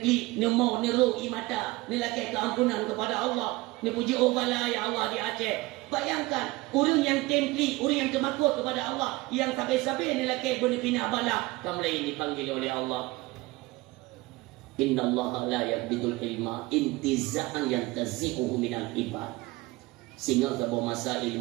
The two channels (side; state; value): left; quieter; 21.1 dB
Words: nemo, neru, imata, nelakai keampunan kepada Allah, nepuji Allah lah ya Allah di Aceh. Bayangkan orang yang templi, orang yang termakut kepada Allah, yang sampai-sampai nelakai benepina bala, kamu ini dipanggil oleh Allah. Innallaha la yaqbidul ilma intiza'an yantazi'uhu minal ibad. Sehingga sebuah masa